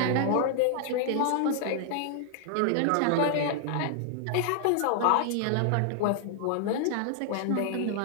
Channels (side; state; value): both; different; correlation 0.00